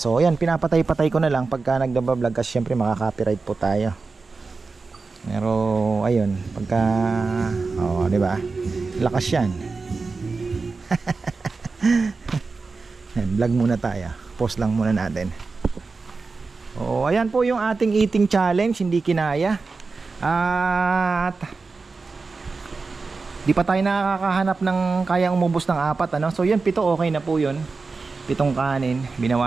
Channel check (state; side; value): quieter; left; 4.2 dB